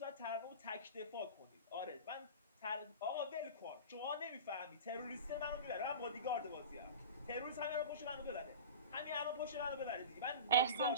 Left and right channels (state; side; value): inverted; both; correlation -0.32